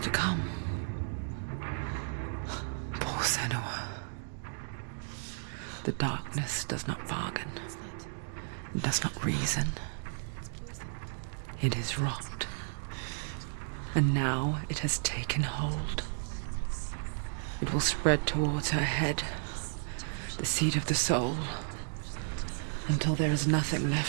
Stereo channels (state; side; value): silent; left; digital silence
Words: come. Poor Senua. The darkness does not bargain. It does not reason. It is rot. And now it has taken hold. It will spread towards her head, the seat of the soul, until there is nothing